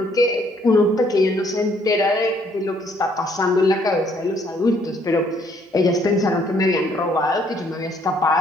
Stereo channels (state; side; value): normal; both; correlation 0.66